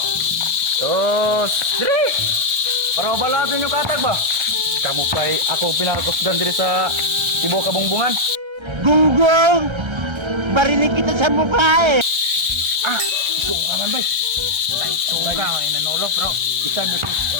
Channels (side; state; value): left; late; 1.3 ms